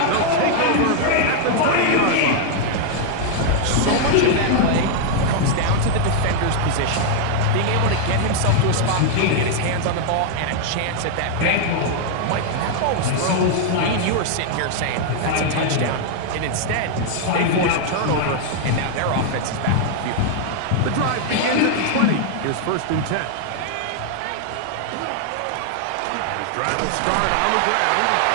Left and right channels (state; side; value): different; both; correlation 0.00